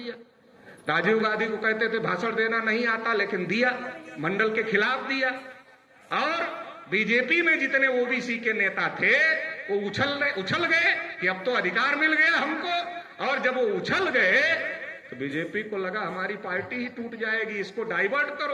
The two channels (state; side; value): identical; both; correlation 1.00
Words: राजीव गांधी को कहते थे भाषण देना नहीं आता, लेकिन दिया, मंडल के खिलाफ दिया। और बीजेपी में जितने ओबीसी के नेता थे वो उछल गए कि अब तो अधिकार मिल गया हमको। और जब वो उछल गए तो बीजेपी को लगा हमारी पार्टी ही टूट जाएगी, इसको डाइवर्ट